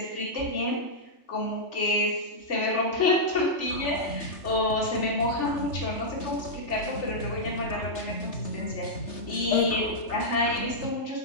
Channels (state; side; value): late; right; 3.3 ms